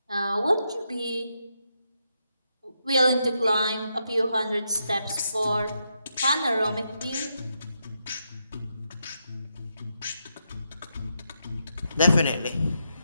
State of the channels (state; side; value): inverted; both; correlation -0.82